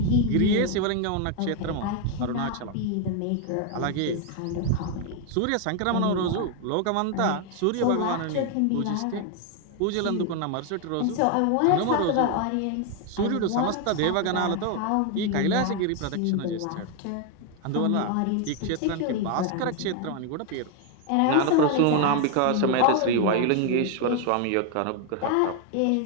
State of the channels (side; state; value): both; different; correlation 0.01